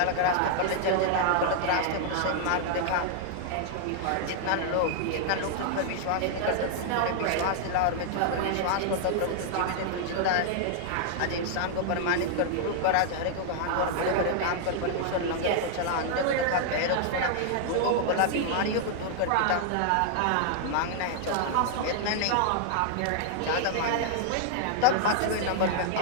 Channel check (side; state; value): both; different; correlation -0.01